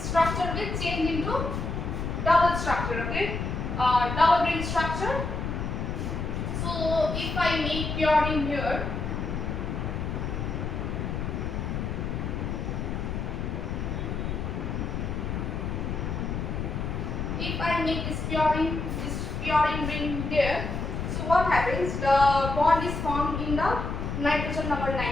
will change into double structure. Okay, double ring structure. So if I make purine here, if I make this purine ring there, so what happens? The bond is formed in the nitrogen number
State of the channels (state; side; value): noise; left; rumble, 3 dB below the sound